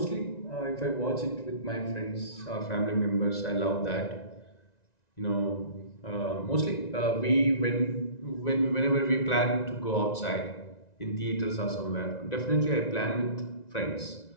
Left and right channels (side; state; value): right; late; 1.9 ms